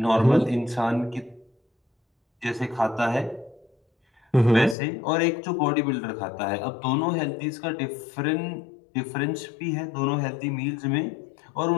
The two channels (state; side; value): drops out; right; at 4.8 s